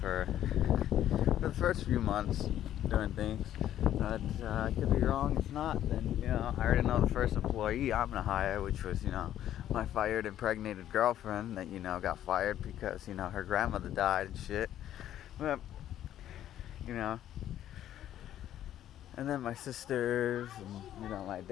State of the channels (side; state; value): right; quieter; 11.7 dB